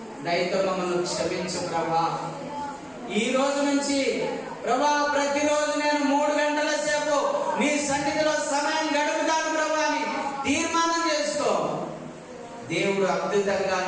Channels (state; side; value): identical; both; correlation 1.00